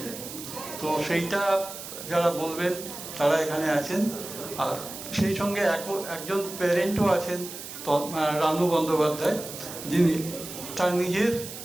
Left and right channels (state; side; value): noise; right; hiss, 11 dB below the sound